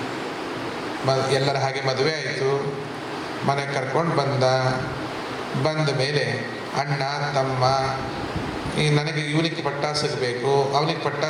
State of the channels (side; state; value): both; identical; correlation 1.00